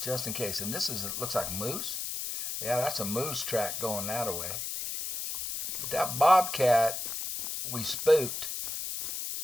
just in case. And this is, it looks like moose. Yeah, that's a moose track going that way. But that bobcat we spooked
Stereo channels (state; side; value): noise; left; hiss, 4 dB below the sound